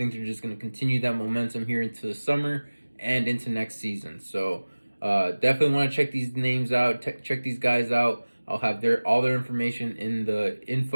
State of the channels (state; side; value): inverted; both; correlation -1.00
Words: they're just going to continue that momentum here into the summer and into next season. So definitely want to check these names out, check these guys out. I'll have all their information in the